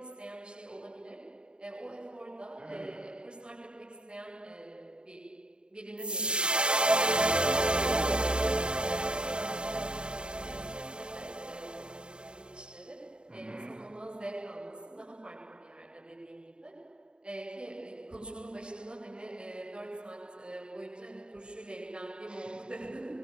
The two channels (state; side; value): late; left; 0.050 ms